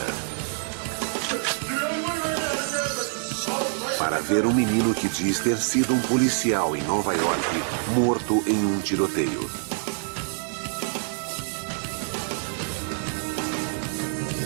para ver um menino que diz ter sido um policial em Nova York morto em um tiroteio.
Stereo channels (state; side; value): silent; left; 61 dB below the other